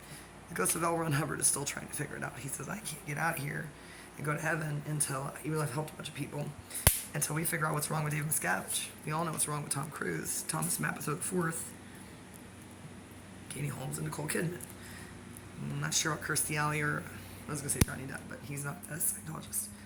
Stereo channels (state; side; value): identical; both; correlation 1.00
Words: The ghost of L. Ron Hubbard is still trying to figure it out. He says, I can't get out of here and go to heaven until, even though I've helped a bunch of people, until we figure out what's wrong with David Miscavige. We all know what's wrong with Tom Cruise, Thomas Mapotho IV, Katie Holmes, and Nicole Kidman. I'm not sure about Kirstie Alley or, I was going to say Johnny Depp, but he's not a Scientologist,